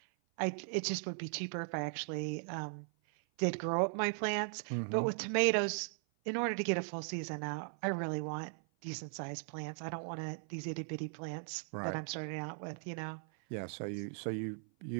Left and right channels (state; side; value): silent; left; 52 dB below the other